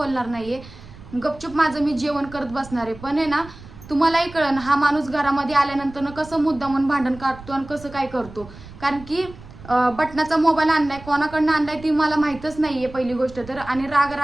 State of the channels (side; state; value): right; noise; rumble, 18 dB below the sound